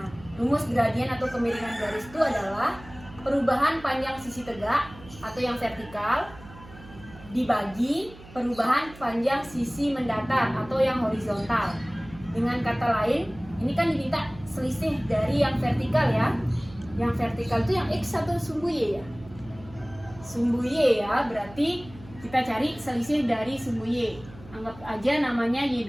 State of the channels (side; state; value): right; noise; hum, 19 dB below the sound